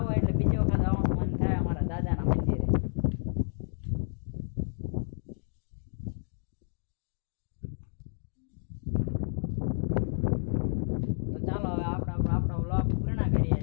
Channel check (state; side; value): silent; right; digital silence